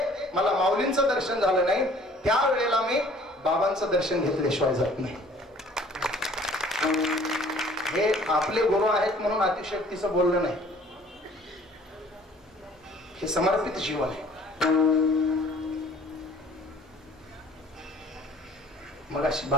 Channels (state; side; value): normal; both; correlation 0.54